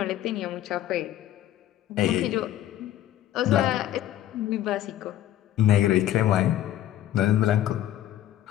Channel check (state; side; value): quieter; right; 12.7 dB